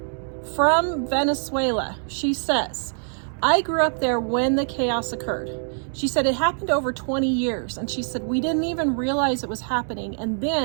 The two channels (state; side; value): silent; left; digital silence